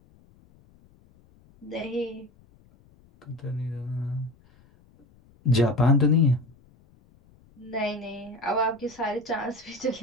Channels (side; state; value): left; noise; rumble, 29 dB below the sound